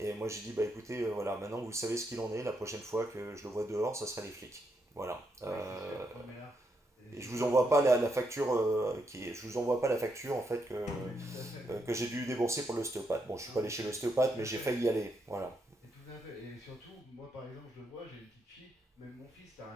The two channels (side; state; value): both; normal; correlation 0.79